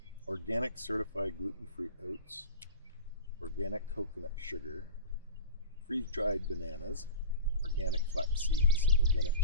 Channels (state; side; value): inverted; both; correlation -0.34